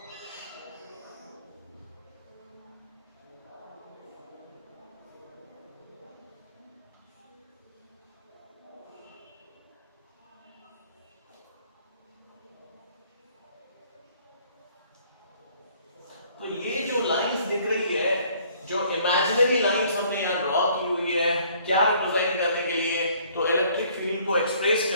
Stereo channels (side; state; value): both; inverted; correlation -0.60